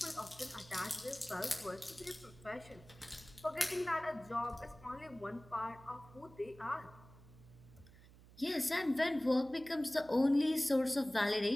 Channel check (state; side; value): noise; right; hum, 22 dB below the sound